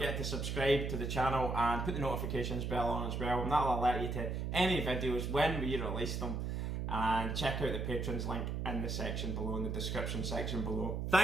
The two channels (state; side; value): noise; right; hum, 2 dB below the sound